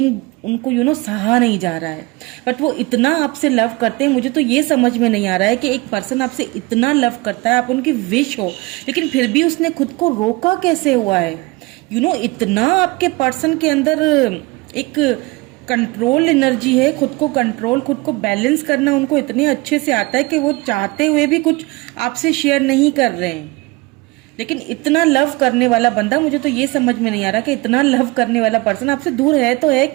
उनको सहा नहीं जा रहा है। बट वो इतना आपसे लव करते हैं, मुझे तो ये समझ में नहीं आ रहा है कि एक पर्सन आपसे इतना लव करता है, आप उनकी विश हो, लेकिन फिर भी उसने खुद को रोका कैसे हुआ है। इतना आपके पर्सन के अंदर एक कंट्रोल एनर्जी है, खुद को कंट्रोल, खुद को बैलेंस करना उनको इतने अच्छे से आता है कि वो चाहते हुए भी कुछ आपसे शेयर नहीं कर रहे हैं। लेकिन इतना लव करने वाला बंदा, मुझे तो ये समझ में नहीं आ रहा कि इतना लव करने वाला पर्सन आपसे दूर है तो है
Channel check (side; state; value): left; quieter; 23.7 dB